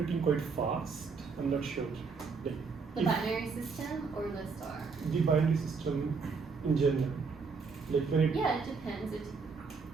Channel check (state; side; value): quieter; left; 4.9 dB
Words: quite fast. I'm not sure. Like The if binary system or the star? the binary system in general, like when it. Yeah, it depends.